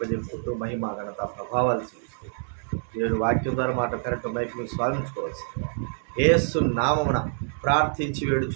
మహిమ ఘనత ప్రభావాలు చూపిస్తూ దేవుని వాక్యం ద్వారా మాట కరెక్ట్ మైక్ మీరు స్వాగతించుకోవచ్చు. యేసు నామమున ప్రార్థించి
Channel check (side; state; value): left; silent; digital silence